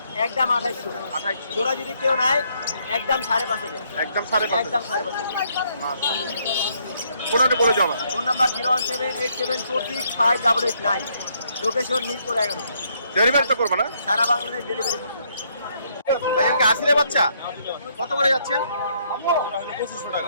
একদম 2800 2800 জোড়া যদি কেউ নেয় একদম 5.5 একদম 5.5 একদম 5.5 ফোনটা বলে যাও আমার phone number 01787465889 location Mirpur 11 delivery তো করবো না সারা বাংলাদেশ ডেলিভারি করছি ভাই এখানে আসলে বাচ্চা কত করে যাচ্ছেন 2500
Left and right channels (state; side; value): inverted; both; correlation -0.71